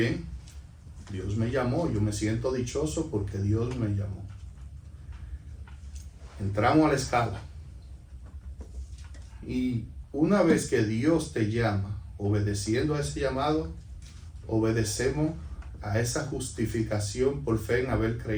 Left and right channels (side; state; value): both; identical; correlation 1.00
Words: Dios me llamó, yo me siento dichoso porque Dios me llamó. Entramos a la escala. Y una vez que Dios te llama, obedeciendo a ese llamado, obedecemos a esa justificación por fe en haber